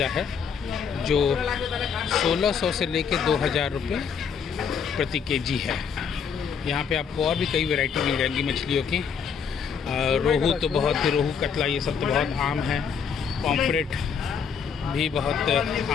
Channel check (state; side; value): quieter; right; 6.7 dB